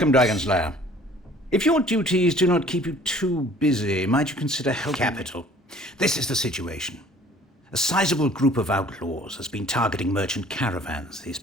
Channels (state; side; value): normal; both; correlation 0.52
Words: Dragon Slayer. If your duties do not keep you too busy, might you consider help? Capital. This is the situation. A sizable group of outlaws has been targeting merchant caravans these